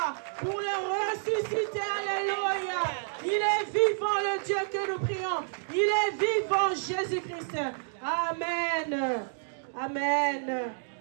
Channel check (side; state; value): left; silent; digital silence